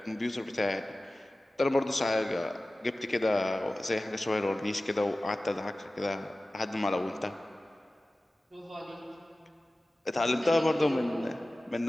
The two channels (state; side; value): normal; both; correlation 0.96